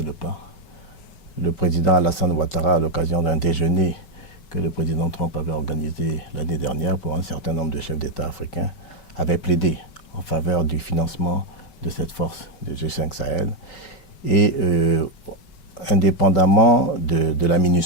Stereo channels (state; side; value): late; right; 5.3 ms